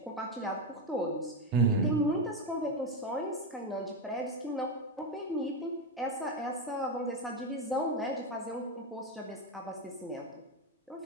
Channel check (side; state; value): both; normal; correlation 0.11